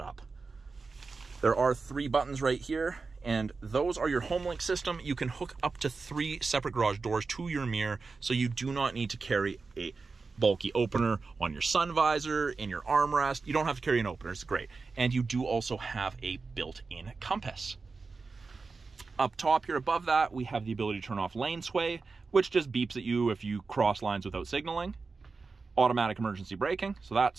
up. There are 3 buttons right here, and those are your HomeLink system. You can hook up to 3 separate garage doors to your mirror, so you do not need to carry a bulky opener on your sun visor, in your armrest. You don't have to carry an opener, it's great. And you do also have a built-in compass. Up top here above that, we have the ability to turn off lane sway, which just beeps at you if you cross lines without signaling. Automatic emergency braking, so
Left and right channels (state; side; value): quieter; left; 4.3 dB